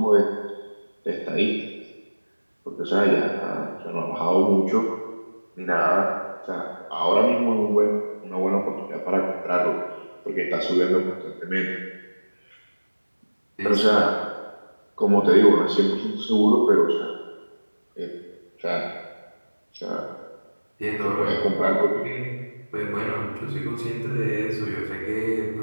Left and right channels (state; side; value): inverted; both; correlation -1.00